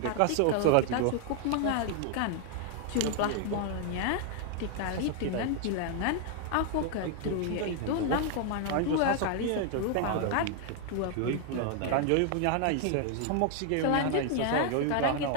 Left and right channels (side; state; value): both; different; correlation 0.00